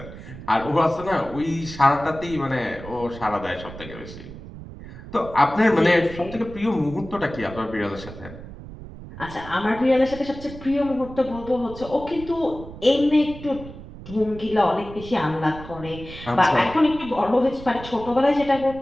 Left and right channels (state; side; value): noise; right; rumble, 14 dB below the sound